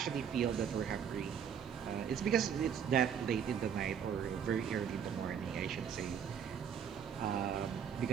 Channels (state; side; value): quieter; left; 7.9 dB